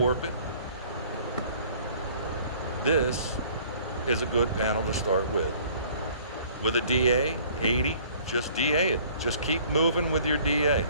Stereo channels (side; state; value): both; inverted; correlation -0.54